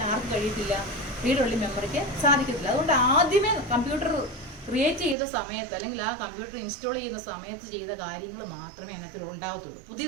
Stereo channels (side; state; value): left; drops out; at 5.2 s